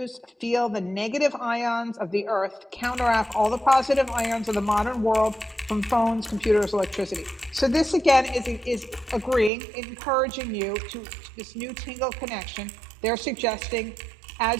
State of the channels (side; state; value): left; drops out; at 9.5 s